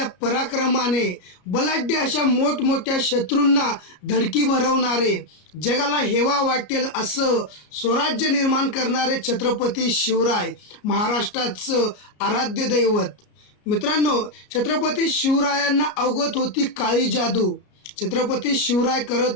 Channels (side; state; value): right; late; 33 ms